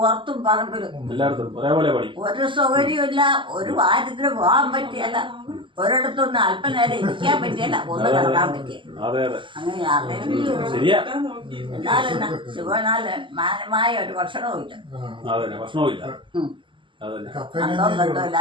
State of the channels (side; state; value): left; late; 0.24 ms